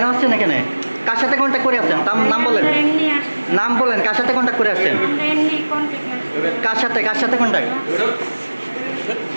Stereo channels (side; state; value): both; inverted; correlation -1.00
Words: আসছেন এখানে? কার সাথে কন্ট্যাক্ট করে আসছেন? নাম বলেন, নাম বলেন। কার সাথে কন্ট্যাক্ট করে আসছেন? কার সাথে কন্ট্যাক্ট?